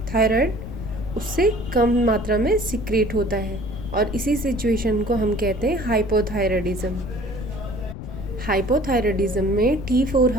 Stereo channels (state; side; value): noise; left; rumble, 9 dB below the sound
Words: थायराइड, उससे कम मात्रा में सिक्रेट होता है और इसी सिचुएशन को हम कहते हैं हाइपोथायराइडिज्म। हाइपोथायराइडिज्म में T4